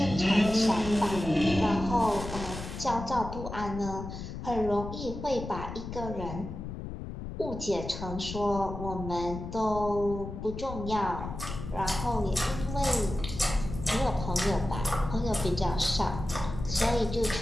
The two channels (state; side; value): noise; left; rumble, 8 dB below the sound